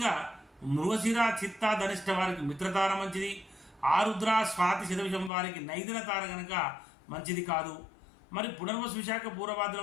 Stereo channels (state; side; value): drops out; right; at 5.3 s